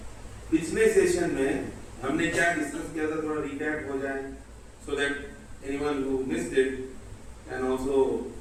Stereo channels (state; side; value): identical; both; correlation 1.00